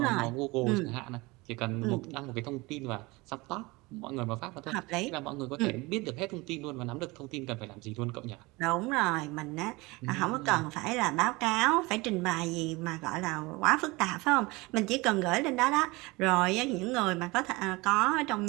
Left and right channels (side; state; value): left; quieter; 23.4 dB